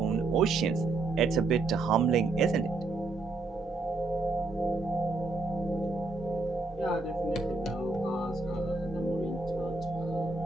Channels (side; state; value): left; quieter; 3.4 dB